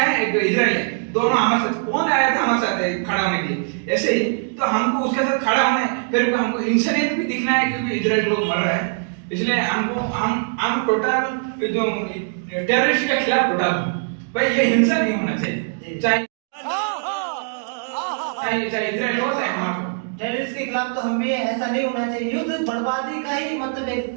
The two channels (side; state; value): left; silent; digital silence